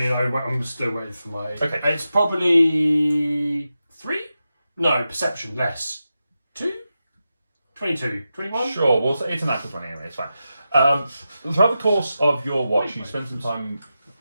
I'm still waiting for my. Okay. It's probably 3? No, perception less. 2? 22? 21? Sure, well, it's a natural 20 anyway, it's fine. Throughout the course of your watch, you spend some time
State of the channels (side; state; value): both; inverted; correlation -0.91